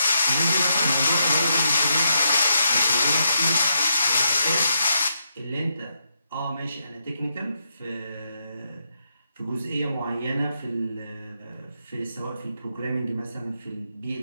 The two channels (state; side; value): inverted; both; correlation -0.80